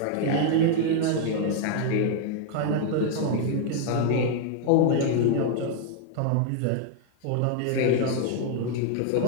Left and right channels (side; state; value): both; different; correlation 0.00